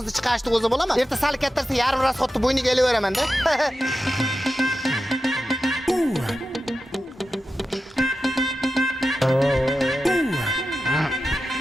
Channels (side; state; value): both; normal; correlation 0.92